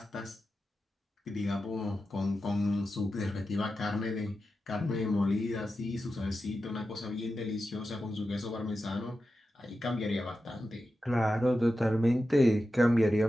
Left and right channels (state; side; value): normal; both; correlation 0.91